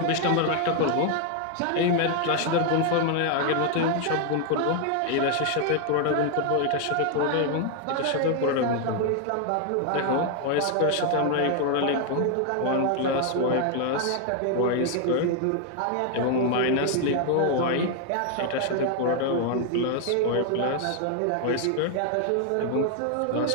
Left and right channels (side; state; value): both; different; correlation 0.00